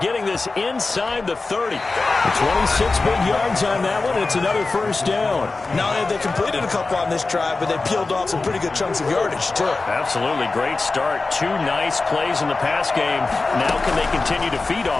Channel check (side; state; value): right; quieter; 3.7 dB